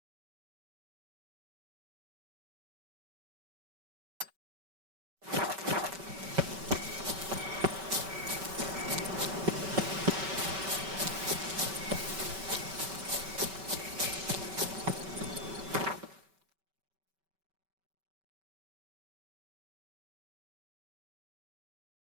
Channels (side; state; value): left; late; 5.2 ms